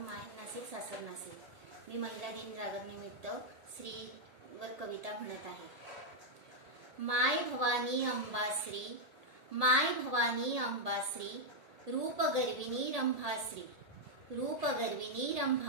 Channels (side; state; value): left; late; 1.8 ms